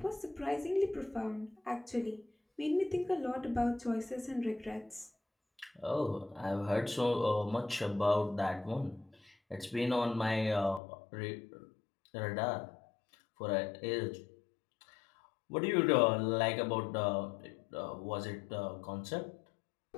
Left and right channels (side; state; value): right; drops out; at 10.8 s